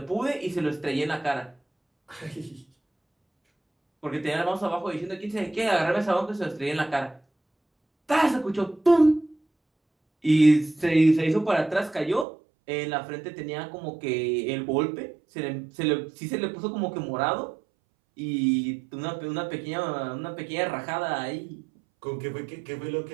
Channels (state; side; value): drops out; left; at 12.2 s